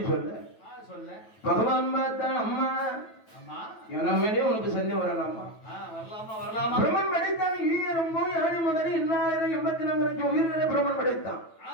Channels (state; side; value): late; right; 9.1 ms